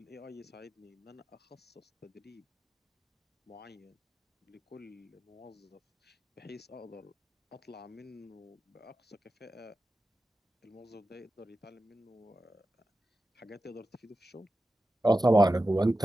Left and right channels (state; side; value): normal; both; correlation 0.93